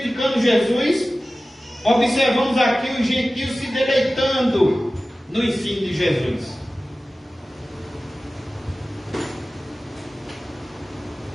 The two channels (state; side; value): normal; both; correlation 0.96